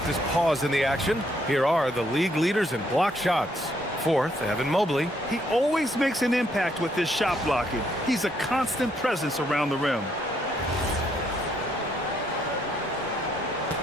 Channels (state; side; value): normal; both; correlation 0.72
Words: this pause in the action, here are the league leaders in block shots. 4th, Evan Mobley. He always makes an impact with his shot blocking. He's a constant presence around the rim.